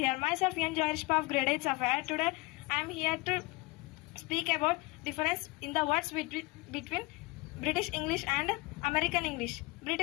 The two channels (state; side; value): quieter; right; 24.0 dB